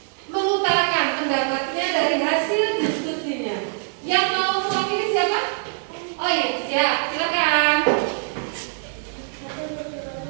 mengutarakan pendapatnya dari hasil diskusinya. Yang mau mewakili siapa? Oh iya, siap. Silakan.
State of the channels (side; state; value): left; silent; digital silence